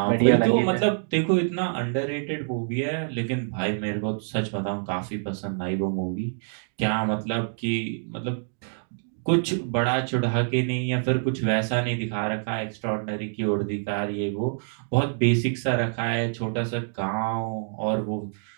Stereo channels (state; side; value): silent; left; digital silence